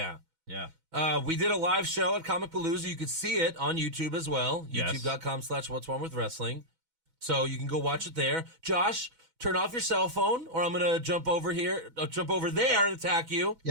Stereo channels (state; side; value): late; left; 6.1 ms